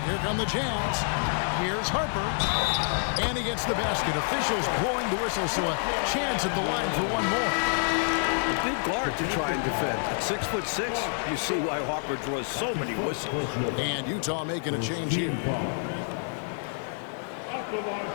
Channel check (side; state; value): right; silent; 59 dB below the other